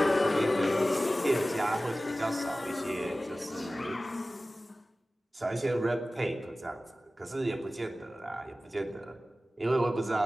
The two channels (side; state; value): both; normal; correlation 0.96